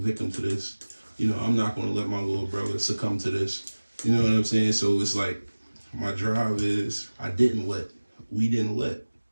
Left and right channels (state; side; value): inverted; both; correlation -1.00